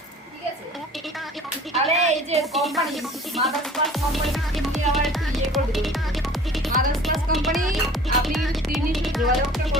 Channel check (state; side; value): normal; both; correlation 0.47